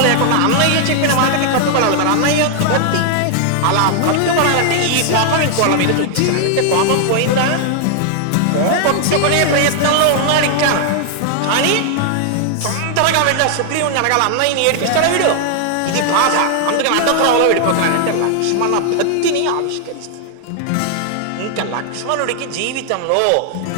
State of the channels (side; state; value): both; different; correlation 0.00